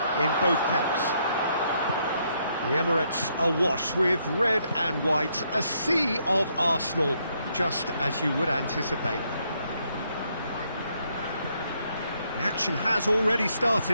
in both camps. The Emirates awash with red and white, a sea of Arsenal, just as you would anticipate. The action has already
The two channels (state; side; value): inverted; both; correlation -0.74